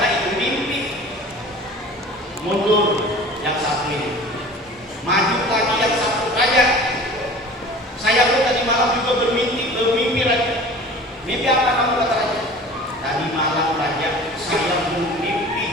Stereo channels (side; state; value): both; normal; correlation 0.41